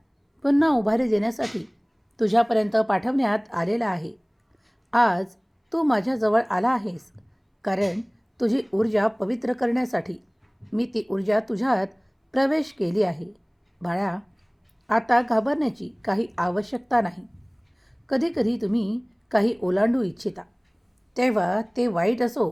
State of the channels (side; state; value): both; identical; correlation 1.00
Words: पुन्हा उभारी देण्यासाठी तुझ्यापर्यंत पाठवण्यात आलेला आहे. आज तू माझ्याजवळ आला आहेस कारण तुझी ऊर्जा पवित्र करण्यासाठी मी ती ऊर्जा तुझ्यात प्रवेश केली आहे. बाळा, आता घाबरण्याची काही आवश्यकता नाही. कधीकधी तुम्ही काही ओलांडू इच्छिता तेव्हा ते वाईट असो